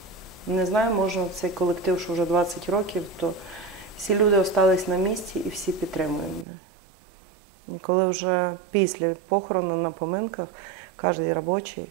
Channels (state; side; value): drops out; left; at 6.5 s